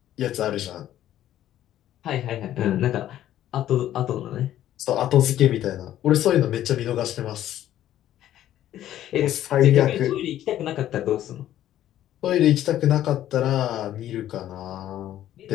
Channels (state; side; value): quieter; right; 12.3 dB